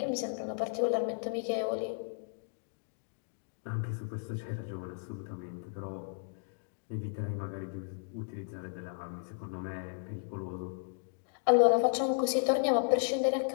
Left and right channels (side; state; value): right; silent; digital silence